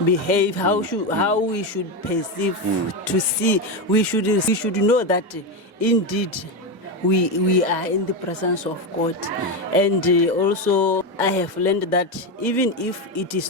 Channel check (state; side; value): normal; both; correlation 0.12